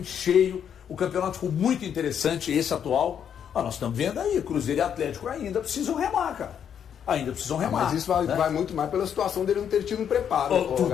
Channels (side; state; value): right; quieter; 8.5 dB